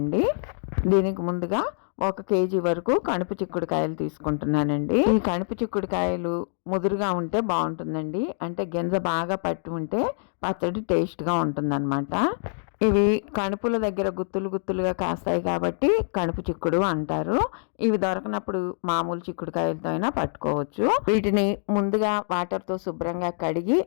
దీనికి ముందుగా 1 కేజీ వరకు కణుపు చిక్కుడుకాయలు తీసుకుంటున్నానండి. ఈ కణుపు చిక్కుడుకాయలు ముదురుగా ఉంటే బాగుంటుందండి. అంటే గింజ బాగా పట్టి ఉంటే పచ్చడి టేస్ట్గా ఉంటుందన్నమాట. ఇవి కణుపుల దగ్గర గుత్తులు గుత్తులుగా కాస్తాయి కాబట్టి కణుపు చిక్కుడు అంటారు. ఇవి దొరకనప్పుడు మామూలు చిక్కుడుకాయలతో అయినా పట్టుకోవచ్చు. వీటిని ముందుగా వాటర్తో శుభ్రంగా కడిగి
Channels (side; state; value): right; silent; digital silence